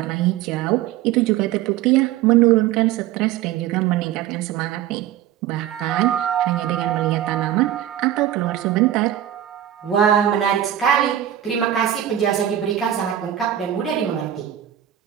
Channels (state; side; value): quieter; left; 11.5 dB